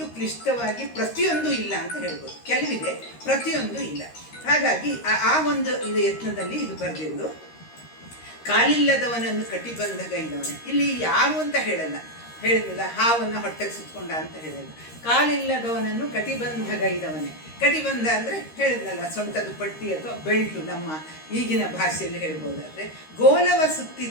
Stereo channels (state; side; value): late; right; 13 ms